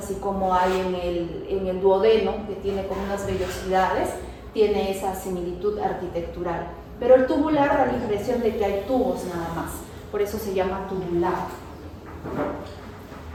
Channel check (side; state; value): both; identical; correlation 1.00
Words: como hay en el duodeno, que tiene como unas vellosidades, tiene esa similitud arquitectural. Pero el tubular da la impresión de que hay tubos nada más, por eso se llama tubular.